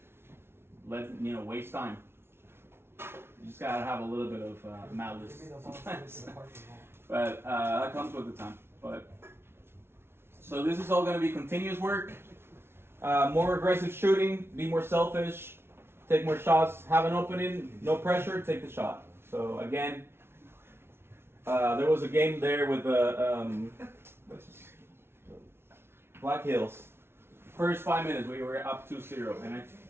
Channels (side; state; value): left; late; 0.12 ms